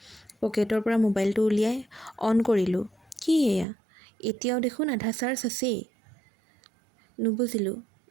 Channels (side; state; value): left; drops out; at 3.7 s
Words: পকেটৰ পৰা মোবাইলটো উলিয়াই অন কৰিলোঁ। কি এয়া? এতিয়াও দেখোন আধা চাৰ্জ আছেই। নুবুজিলোঁ